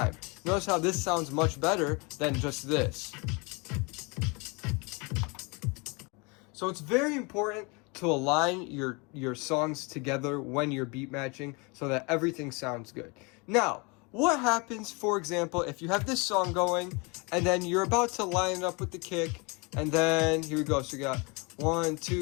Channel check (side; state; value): right; quieter; 29.5 dB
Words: Notice how this sounds much better than just this. So it's very important to align your songs together when you're beat matching so that everything sounds good. Now, what happens, for example, if you have this song going and then you're about to line it up with the kick, and then here we go. So we got 1,